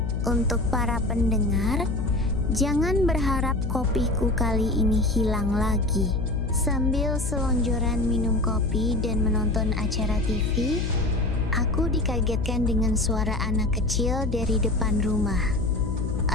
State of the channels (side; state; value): left; noise; hum, 2 dB below the sound